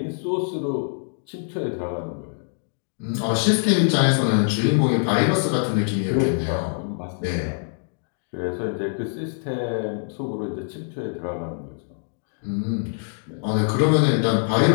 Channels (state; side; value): silent; right; digital silence